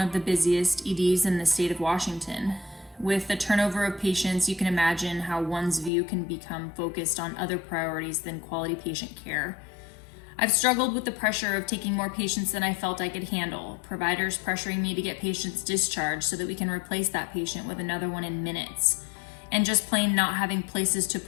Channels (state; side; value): drops out; right; at 5.9 s